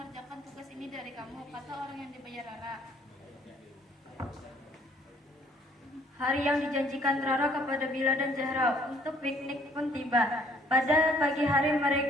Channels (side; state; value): both; normal; correlation 0.60